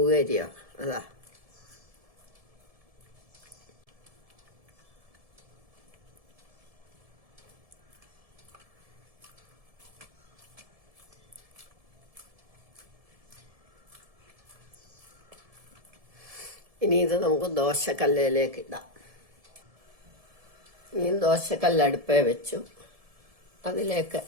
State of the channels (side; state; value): left; late; 1.7 ms